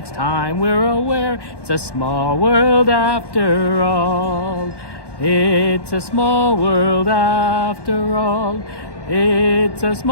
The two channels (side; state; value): right; late; 1.1 ms